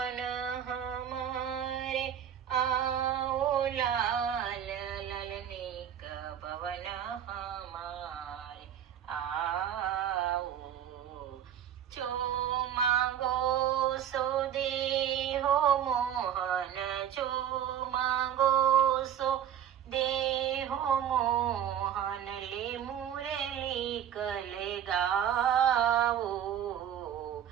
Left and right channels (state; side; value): quieter; left; 9.7 dB